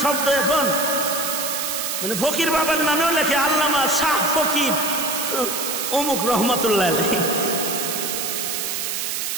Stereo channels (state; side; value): noise; right; hiss, 2 dB below the sound